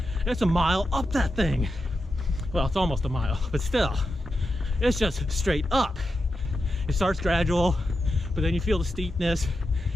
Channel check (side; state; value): both; normal; correlation 0.88